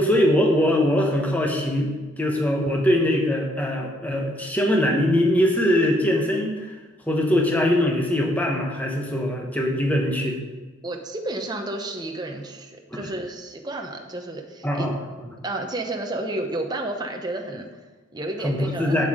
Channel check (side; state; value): both; normal; correlation 0.69